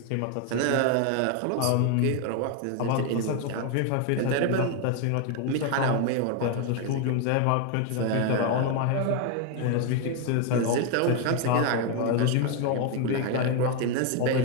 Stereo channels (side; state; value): both; different; correlation 0.01